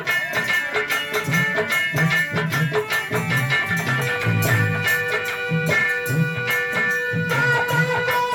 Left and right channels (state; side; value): identical; both; correlation 1.00